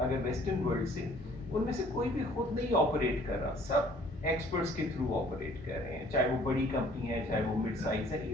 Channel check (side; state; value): both; normal; correlation 0.57